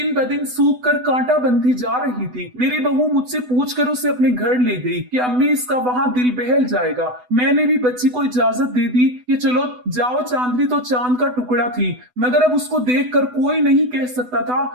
ब दिन सूख कर कांटा बनती जा रही थी। मेरी बहू मुझसे पूछकर उसे अपने घर ले गई कि अम्मी इसका वहाँ दिल बहल जाएगा। मैंने भी बच्ची को इजाजत दे दी कि चलो जाओ। चांदनी तो चांद का टुकड़ा थी, मगर अब उसको देखकर कोई नहीं कह सकता था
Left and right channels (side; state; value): left; late; 8.0 ms